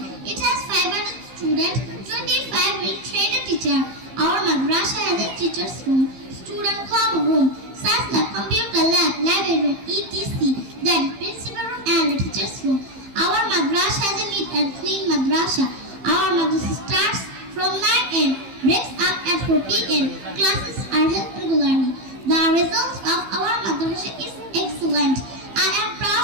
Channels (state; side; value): late; left; 15 ms